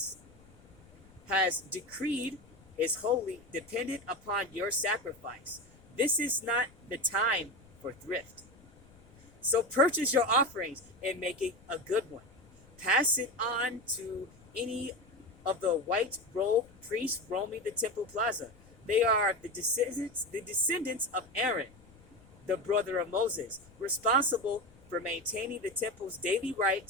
has decreed is wholly dependent upon your sacrifice. This is not the time for thrift. So purchase your offerings and make it a good one. Pass it on to any of the white-robed priests roaming the temple plaza. They are the descendants of Aaron, the brother of Moses, responsible for maintaining the temple's daily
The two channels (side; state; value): left; noise; rumble, 25 dB below the sound